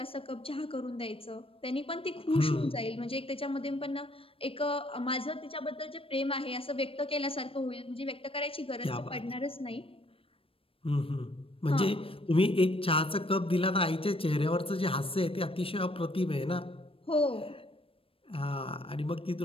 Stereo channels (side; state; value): right; late; 0.27 ms